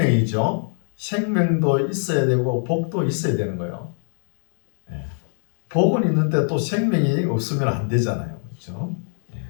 생명도 있어야 되고 복도 있어야 되는 거예요. 복은 있는데 또 생명이 없으면 안 되잖아요. 그렇죠?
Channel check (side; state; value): right; silent; 61 dB below the other